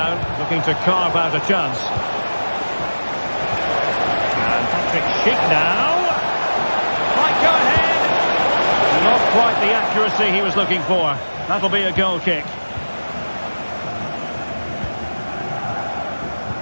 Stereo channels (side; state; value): both; inverted; correlation -1.00